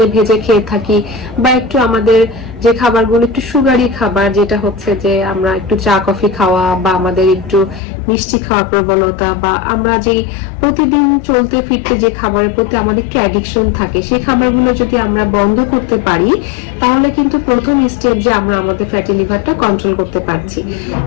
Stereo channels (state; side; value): drops out; right; at 7.8 s